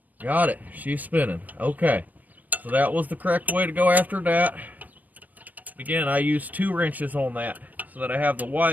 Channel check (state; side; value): late; left; 0.082 ms